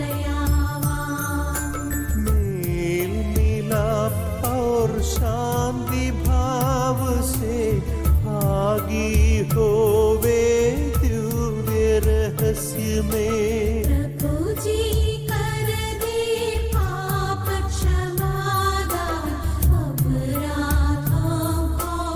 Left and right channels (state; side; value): identical; both; correlation 1.00